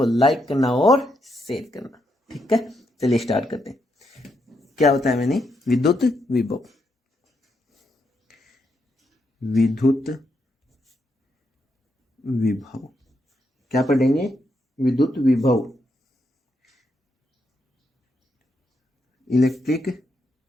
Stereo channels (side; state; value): both; normal; correlation 0.80